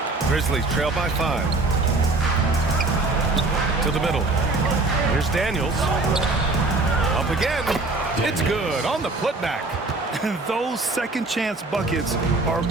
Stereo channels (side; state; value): left; quieter; 3.2 dB